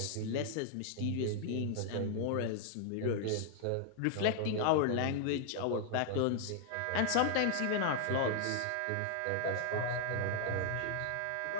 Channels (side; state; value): both; different; correlation 0.00